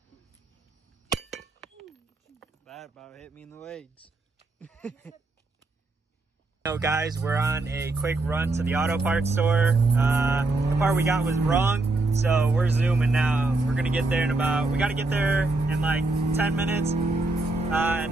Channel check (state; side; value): quieter; left; 3.1 dB